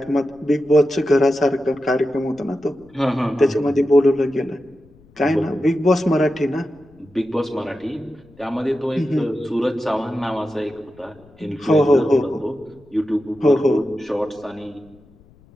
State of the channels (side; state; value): left; noise; rumble, 28 dB below the sound